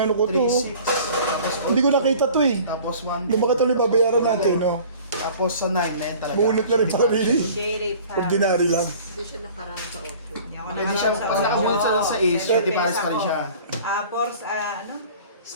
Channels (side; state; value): both; inverted; correlation -0.47